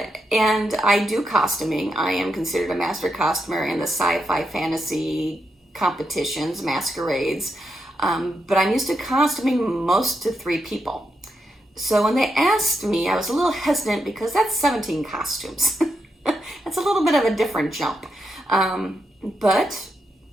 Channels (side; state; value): both; normal; correlation 0.83